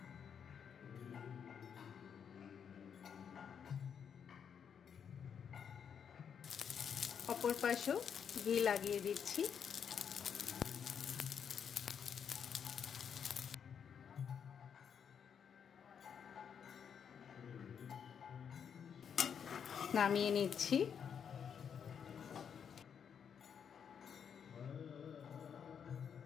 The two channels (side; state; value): right; quieter; 7.5 dB